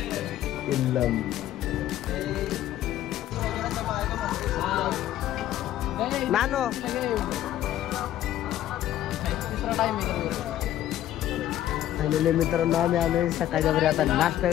नानो फायनली मित्रांनो आम्ही आलोय सकाळच्या बरी आता नाश्ता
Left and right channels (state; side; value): quieter; right; 12.6 dB